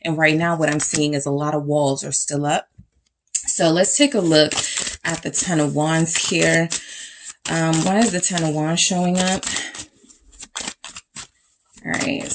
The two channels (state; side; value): identical; both; correlation 1.00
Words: And right now what I'm seeing is a lot of walls are still up. So let's take a look at the 10 of Wands here. Why is the 10 of Wands showing up? All right,